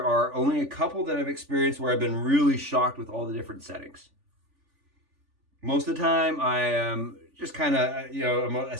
are only a couple that I've experienced where I've been really shocked with all the different settings. Most of the time, I am just kind of, I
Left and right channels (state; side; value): late; left; 3.5 ms